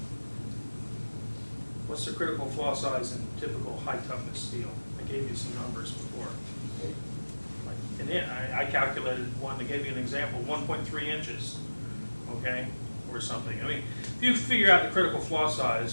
What's the critical flaw size in typical high toughness steel? I gave you some numbers before. And I calculated one to give you an example, 1.3 inches, okay, or something. I mean, if you figure out the critical flaw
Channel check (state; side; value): inverted; both; correlation -1.00